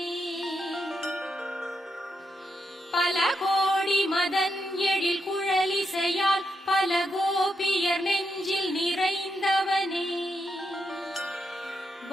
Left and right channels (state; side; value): normal; both; correlation 0.83